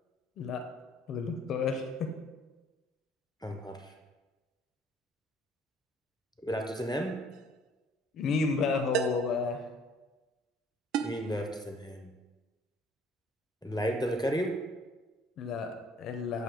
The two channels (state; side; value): normal; both; correlation 0.56